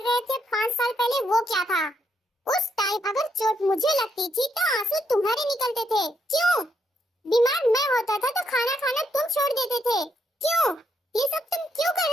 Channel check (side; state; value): both; normal; correlation 0.77